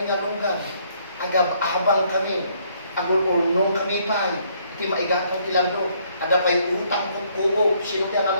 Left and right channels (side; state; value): both; inverted; correlation -0.67